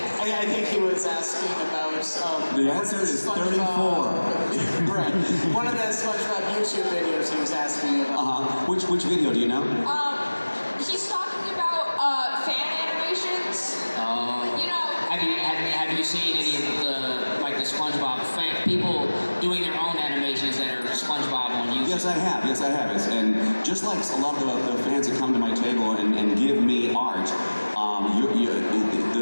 I think he was asking about. The answer is 34. Right. One of the SpongeBob YouTube videos he was asking about. Which video do you know? He's talking about fan animations. You know. Have you seen any of the SpongeBob people doing their own animations that are SpongeBob on YouTube? Yes, I have. And just like a lot of the fans that come to my table and give me art,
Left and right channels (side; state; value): both; inverted; correlation -1.00